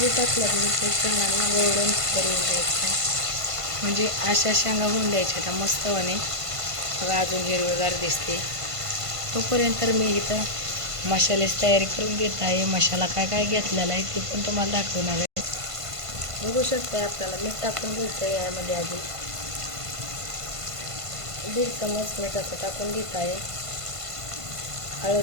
टाकल्यात मी ते शेंगांना गोल्डन करून द्यायचं आहे. म्हणजे अशा शेंगा होऊन द्यायच्या त्या मस्तपणे. बघा अजून हिरवेगार दिसते. तोपर्यंत मी इथं मसाल्याची तयारी करून घेत आहे. मसाला काय काय घेतलेला आहे ते पण तुम्हाला दाखवणार आहे. बघू शकता आपल्याला मीठ टाकून घ्यायचं आहे. यामध्ये आधी 1.5 चमच मीठाचं टाकून घेत आहे.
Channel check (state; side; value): late; left; 1.5 ms